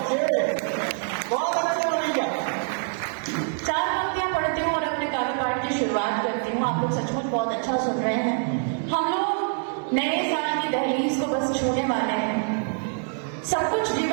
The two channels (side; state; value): left; silent; 56 dB below the other